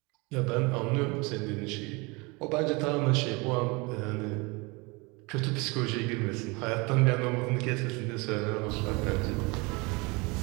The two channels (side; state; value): left; quieter; 27.0 dB